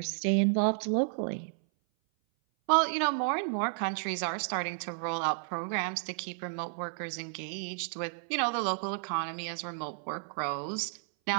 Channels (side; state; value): left; silent; 56 dB below the other